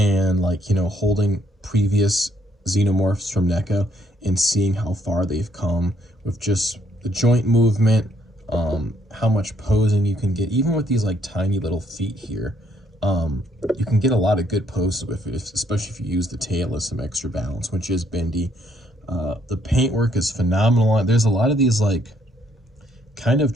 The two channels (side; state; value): both; normal; correlation 0.70